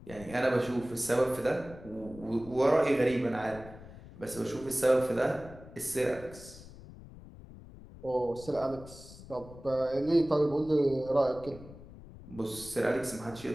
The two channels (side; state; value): left; noise; rumble, 17 dB below the sound